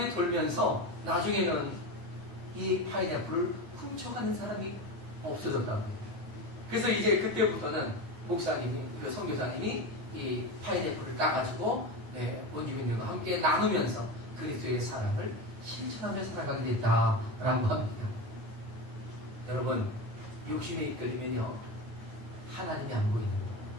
돌면서 나중에는 이 파인애플을 훔쳐가는 사람이 없어졌다고 해요. 그래서 이제 그때부터는 목사님이, 그 선교사님이 이 파인애플을 따가지고 원주민들과 함께 나누면서 그리스도의 사랑을 실천하며 살아가게 됐다라고 합니다. 여러분, 욕심에 이끌리면요, 하나님이 안 보이는 거예요.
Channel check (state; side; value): late; left; 9.6 ms